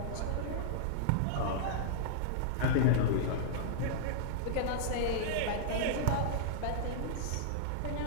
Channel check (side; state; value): both; different; correlation -0.02